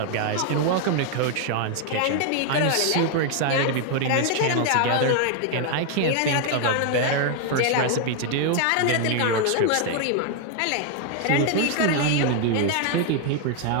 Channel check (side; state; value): both; different; correlation 0.00